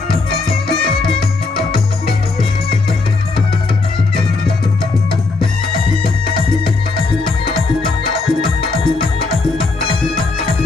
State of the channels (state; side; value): quieter; right; 3.8 dB